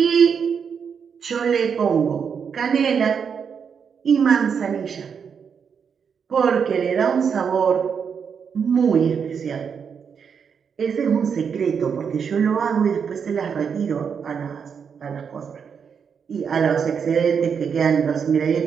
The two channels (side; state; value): left; quieter; 6.7 dB